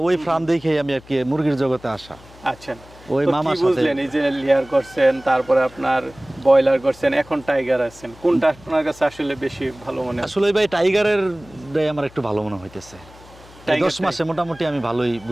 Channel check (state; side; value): noise; left; hum, 23 dB below the sound